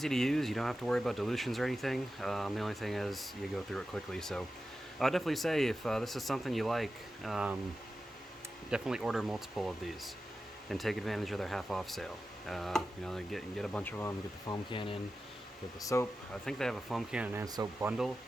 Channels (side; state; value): both; normal; correlation 0.93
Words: to use. You don't have to worry about dilutions or anything. The only thing is you go through it quickly. So I'd definitely say if this is something you like, definitely order multiple of these and take advantage of their half off sale. You know, get a bunch of them, get the foam cannon, get the soap. I think they have a foam cannon and soap bundle.